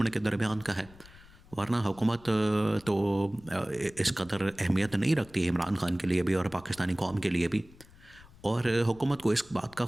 के दरमियान का है, वरना हुकूमत तो इस कदर अहमियत नहीं रखती है इमरान खान के लिए भी और पाकिस्तानी कौम के लिए भी। और हुकूमत को इस बात का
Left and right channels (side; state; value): left; noise; rumble, 23 dB below the sound